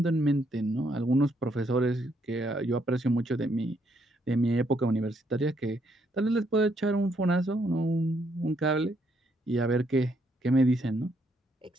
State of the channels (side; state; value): both; normal; correlation 0.73